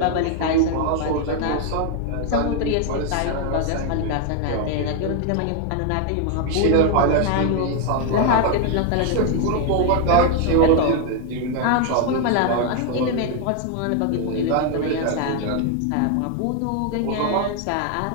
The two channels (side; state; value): both; different; correlation 0.01